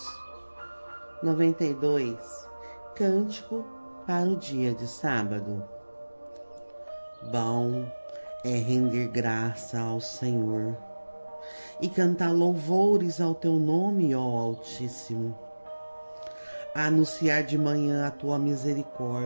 92, Cântico para o dia de sábado. Bom é render graça ao Senhor e cantar louvores ao teu nome, ó Altíssimo. Anunciar de manhã a tua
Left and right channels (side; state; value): both; inverted; correlation -1.00